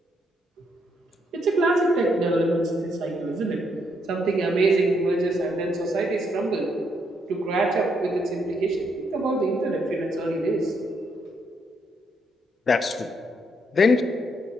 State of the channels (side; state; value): both; normal; correlation 0.75